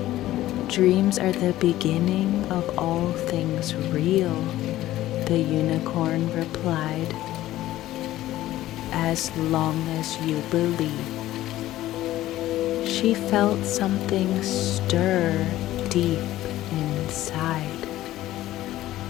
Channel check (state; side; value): quieter; right; 14.9 dB